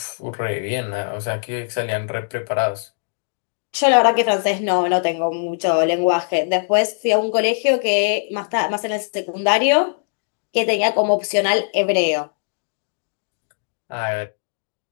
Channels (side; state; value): right; silent; digital silence